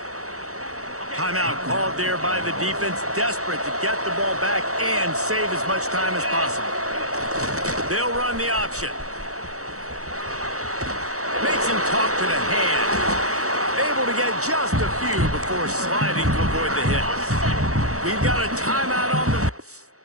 Timeout called there by the defense, desperate to get the ball back and save as much time as possible. They'll run the option. Makes him talk to the hand. Able to get just a few before sliding to avoid the hit. We've got a timeout on the...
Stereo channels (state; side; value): late; left; 0.65 ms